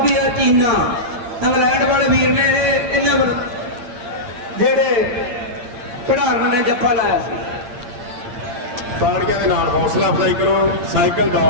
ਚੀਨਾ ਇੰਗਲੈਂਡ ਵਾਲੇ ਵੀਰ ਨੇ ਇਹਨਾਂ ਵੱਲ ਜਿਹੜੇ ਖਿਡਾਰਨ ਨੇ ਜੱਫਾ ਲਾਇਆ ਸੀ ਤਾੜੀਆਂ ਦੇ ਨਾਲ ਹੌਸਲਾ ਅਫਜ਼ਾਈ ਕਰੋ ਸਾਈਕਲ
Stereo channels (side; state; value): left; late; 8.7 ms